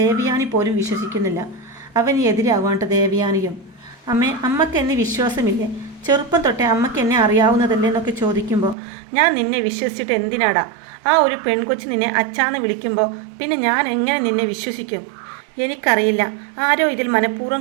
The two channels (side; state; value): left; drops out; at 8.8 s